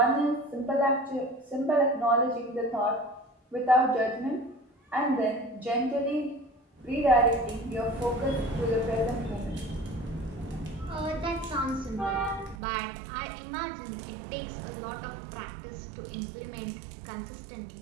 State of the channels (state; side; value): drops out; left; at 12.6 s